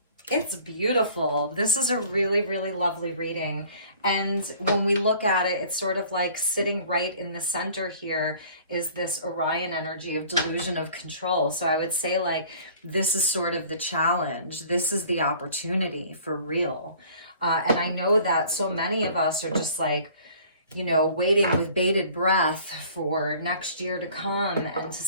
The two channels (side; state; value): both; inverted; correlation -0.51